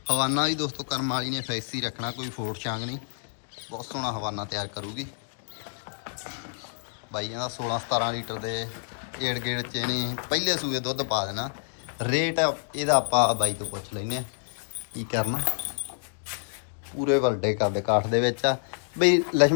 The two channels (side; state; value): right; silent; digital silence